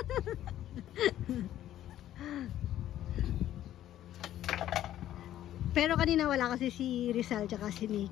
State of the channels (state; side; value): quieter; right; 12.5 dB